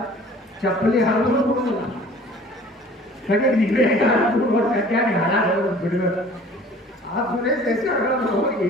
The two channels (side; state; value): both; normal; correlation 0.49